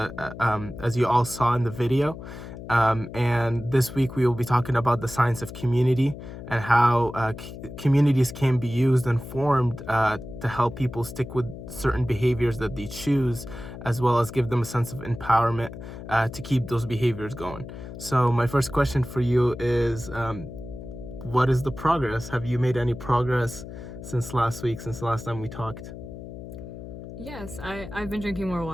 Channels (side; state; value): left; noise; hum, 12 dB below the sound